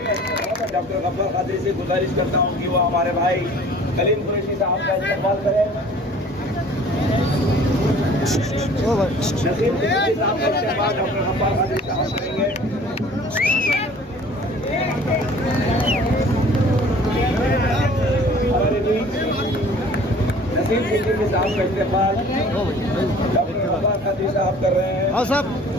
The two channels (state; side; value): normal; both; correlation 0.49